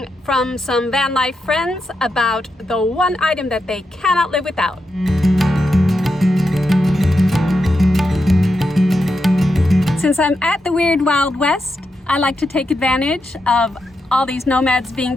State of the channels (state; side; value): normal; both; correlation 0.86